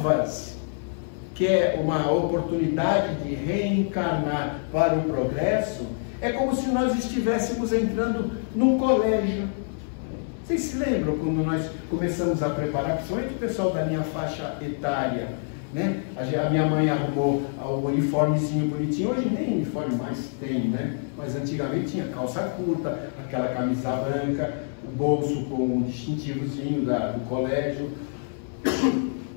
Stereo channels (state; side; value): silent; right; 59 dB below the other